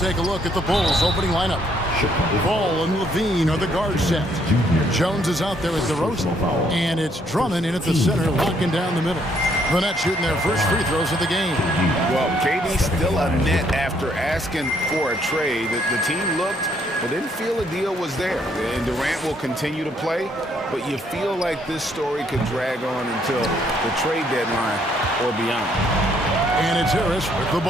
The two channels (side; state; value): both; normal; correlation 0.69